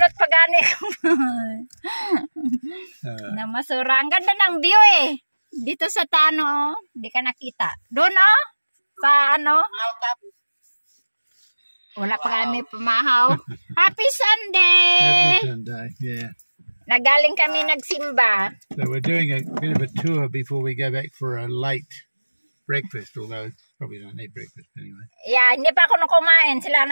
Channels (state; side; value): inverted; both; correlation -1.00